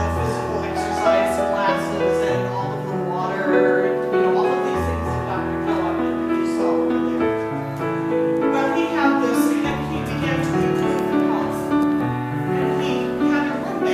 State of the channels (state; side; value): identical; both; correlation 1.00